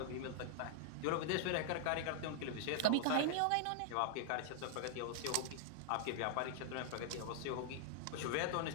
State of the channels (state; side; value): different; both; correlation -0.01